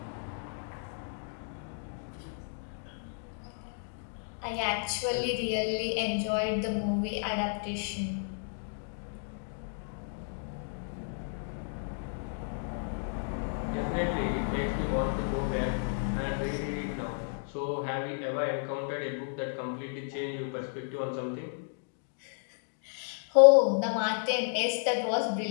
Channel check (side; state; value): right; silent; digital silence